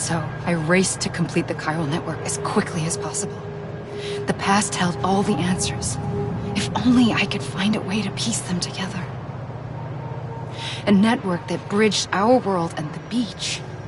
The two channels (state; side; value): identical; both; correlation 1.00